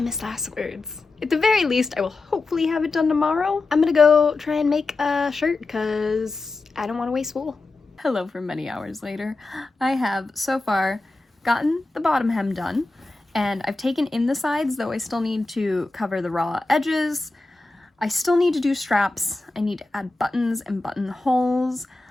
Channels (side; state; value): right; quieter; 3.3 dB